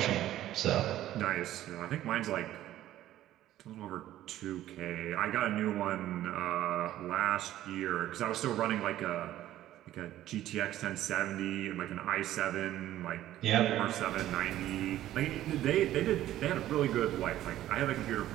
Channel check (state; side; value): quieter; left; 13.4 dB